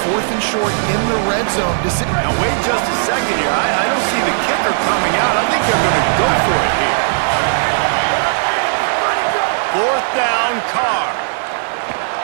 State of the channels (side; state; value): left; silent; digital silence